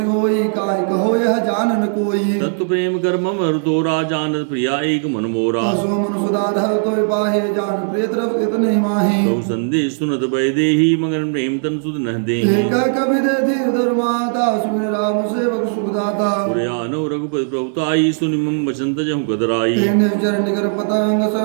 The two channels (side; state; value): left; silent; digital silence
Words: होई काय कहो यह जानन कोई तत्व प्रेम कर मम तोरा जानत प्रिया एक मन मोरा सो मन सुधाधर तो पाहे जान प्रिय तरफ इतने माही बहु संदेश सुनत भय देही मगन प्रेम तन सुध न दे एक कवि दे धीर धर्माता सुन राम सेवक सुखदाता पुरयानो रघुपति रघुपति प्रभुताई सुनि मम वचन तजहु गदराई तेने चरण निकर पतंग